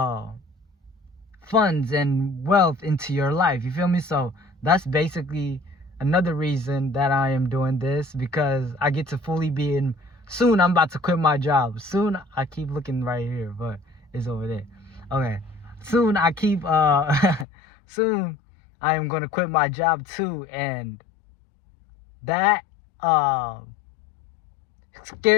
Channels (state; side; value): drops out; right; at 17.4 s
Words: funds and wealth into your life, you feel me? So that's basically another reason that I am doing this, because I get to fully be in. Soon I'm about to quit my job. Soon, I keep looking right here, but it's over there. Okay. Soon soon I am gonna quit my job too, and that